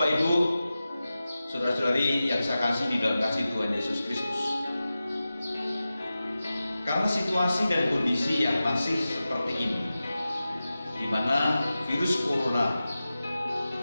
Ibu, saudara-saudari yang saya kasih di dalam kasih Tuhan Yesus Kristus, karena situasi dan kondisi yang masih seperti ini, di mana virus corona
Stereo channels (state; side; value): inverted; both; correlation -0.94